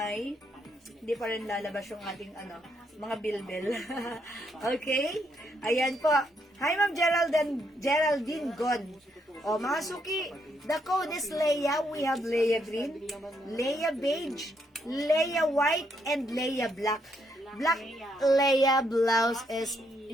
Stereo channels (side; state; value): both; normal; correlation 0.75